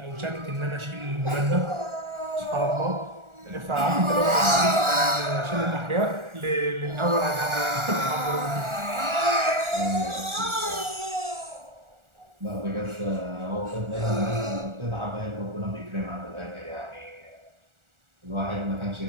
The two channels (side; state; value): left; late; 1.4 ms